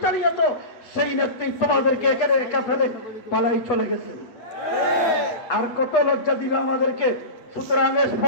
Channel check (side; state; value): right; late; 8.2 ms